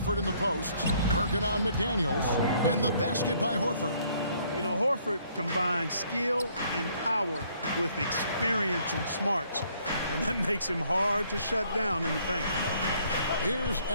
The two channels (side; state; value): both; inverted; correlation -0.64